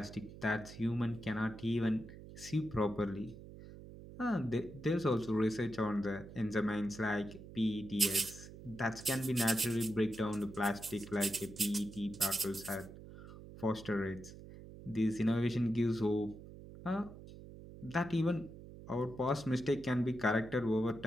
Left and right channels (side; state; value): right; noise; hum, 15 dB below the sound